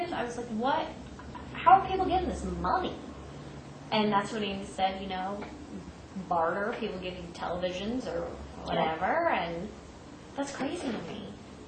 I was like, what? How are people getting this money? And that's when he said, barter, people give you televisions or whatever, and that's crazy to me.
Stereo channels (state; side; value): identical; both; correlation 1.00